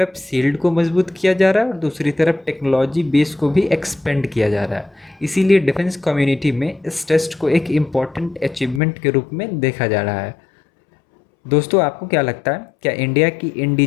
सील्ड को मजबूत किया जा रहा है और दूसरी तरफ टेक्नोलॉजी बेस को भी एक्सपेंड किया जा रहा है। इसीलिए डिफेंस कम्युनिटी में इस टेस्ट को एक इम्पॉर्टेंट अचीवमेंट के रूप में देखा जा रहा है। दोस्तों, आपको क्या लगता है, क्या इंडिया की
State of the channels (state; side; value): drops out; right; at 8.8 s